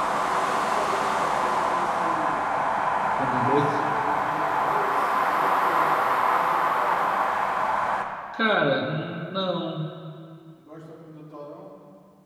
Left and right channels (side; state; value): both; identical; correlation 1.00